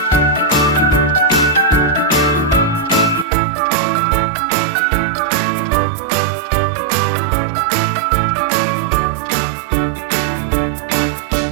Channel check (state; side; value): drops out; left; at 3.2 s